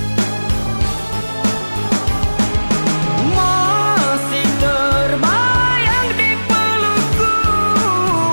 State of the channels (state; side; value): inverted; both; correlation -1.00